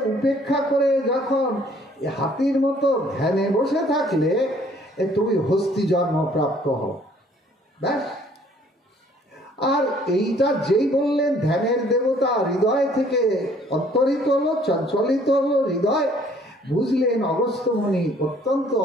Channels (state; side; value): normal; both; correlation 0.59